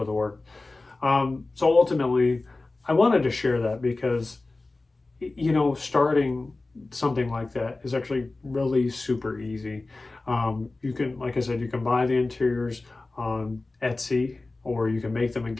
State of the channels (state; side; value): quieter; right; 3.3 dB